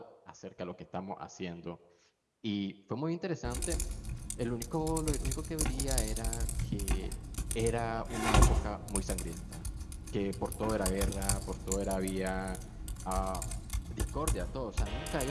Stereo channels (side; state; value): both; identical; correlation 1.00